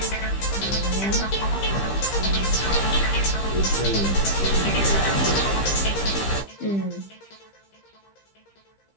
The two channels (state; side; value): late; right; 15 ms